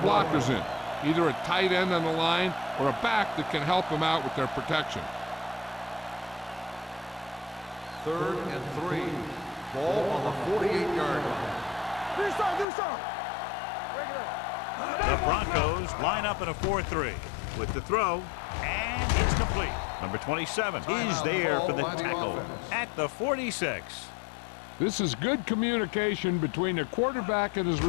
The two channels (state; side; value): drops out; right; at 12.7 s